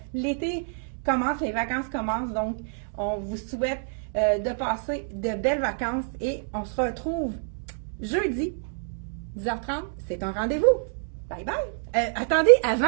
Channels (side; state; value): left; silent; digital silence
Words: l'été commence, les vacances commencent. Donc, on vous souhaite de passer de belles vacances et on se retrouve jeudi, 10h30. C'est un rendez-vous. Bye bye! Attendez,